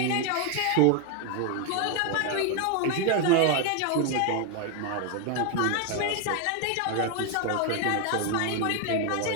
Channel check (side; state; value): both; different; correlation 0.01